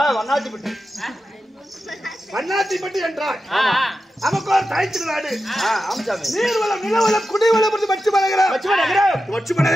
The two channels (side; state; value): both; normal; correlation 0.91